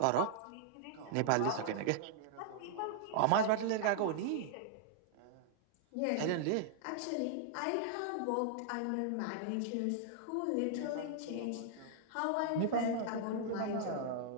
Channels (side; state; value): both; different; correlation -0.01